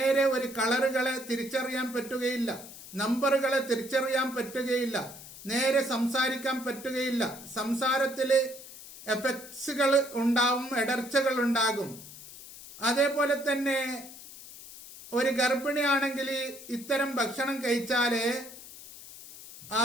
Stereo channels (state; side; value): noise; left; hiss, 16 dB below the sound